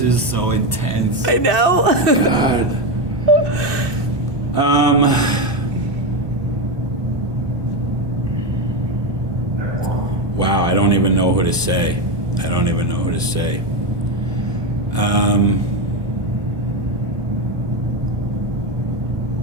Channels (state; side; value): late; left; 1.2 ms